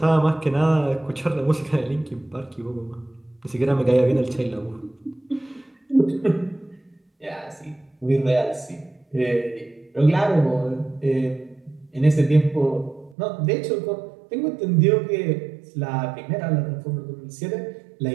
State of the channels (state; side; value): drops out; left; at 13.2 s